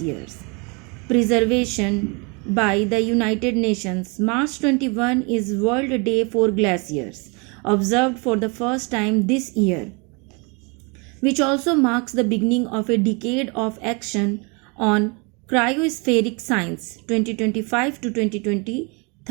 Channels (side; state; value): left; quieter; 31.4 dB